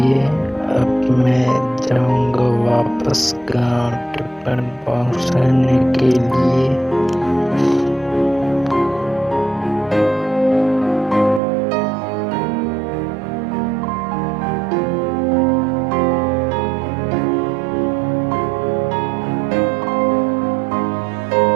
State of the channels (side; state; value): left; drops out; at 11.4 s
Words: अब मैं जाऊंगा वापस गाँव टिफिन पहुँचाने के लिए।